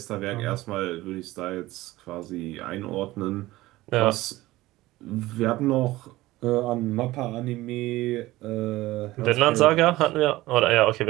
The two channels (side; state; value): left; quieter; 17.9 dB